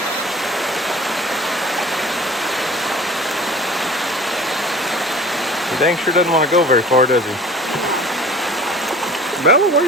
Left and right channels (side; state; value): both; normal; correlation 0.44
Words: He dang sure doesn't want to go very far, does he? Bella, where